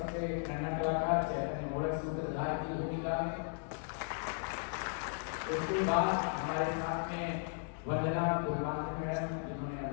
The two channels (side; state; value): right; silent; 54 dB below the other